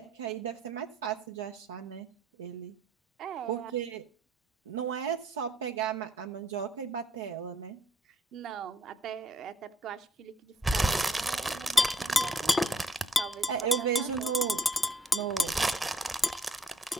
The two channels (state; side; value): normal; both; correlation 0.65